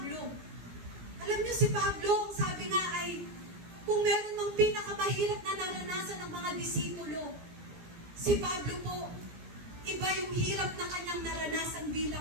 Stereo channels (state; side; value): late; left; 17 ms